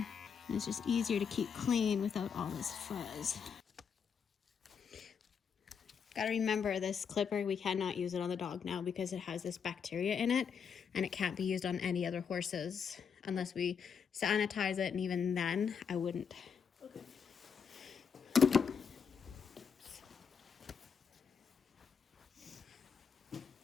And it's just easier to keep clean without all this fuzz. Gotta remember, this clipper, we cannot use it on the dog now because it has this bacteria in it, and it can't be used on any other horses unless we sanitize it, and even then I wouldn't. Okay.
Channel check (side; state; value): right; quieter; 6.7 dB